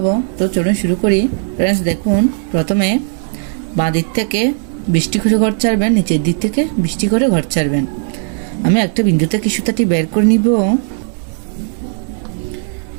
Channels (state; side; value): silent; left; 59 dB below the other